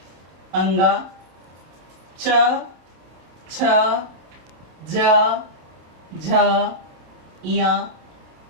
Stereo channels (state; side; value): late; left; 28 ms